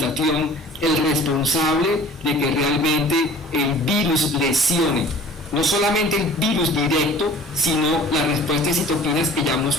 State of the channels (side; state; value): both; normal; correlation 0.46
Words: el responsable de que realmente el virus lesione. No solamente el virus directo, sino la respuesta de citoquinas que ya